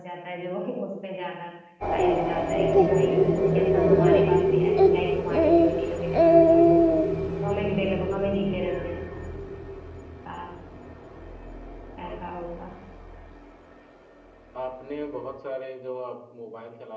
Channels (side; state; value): both; identical; correlation 1.00